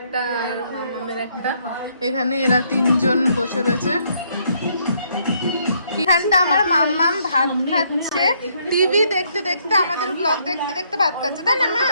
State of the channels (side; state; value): both; inverted; correlation -0.70